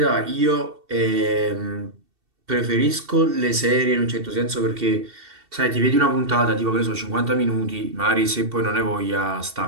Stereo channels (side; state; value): left; late; 2.7 ms